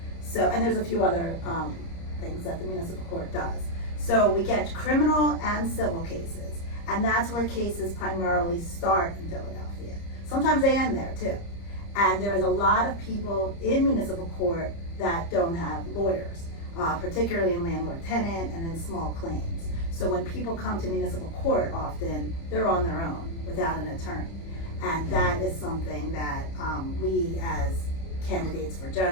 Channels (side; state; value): right; late; 30 ms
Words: So, and there's a few other things that the municipal court does. So we get criminal and civil cases, and that's where cases primarily start in Philadelphia. Sometimes they end there too. And there is a lot of people in municipal court that don't have lawyers, particularly in landlord-tenant and in small claims. So when people come to municipal court, often they're on their own without an attorney. And that is something that we as candidates for